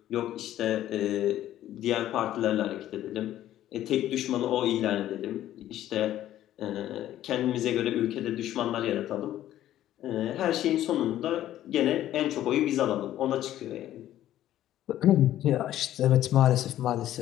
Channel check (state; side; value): quieter; right; 12.8 dB